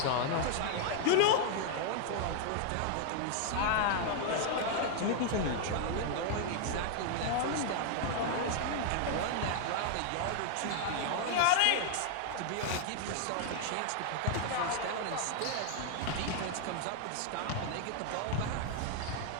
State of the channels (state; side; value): different; both; correlation 0.00